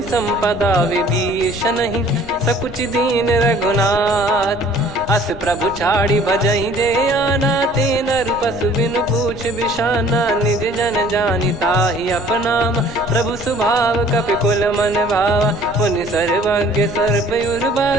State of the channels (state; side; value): noise; left; rumble, 16 dB below the sound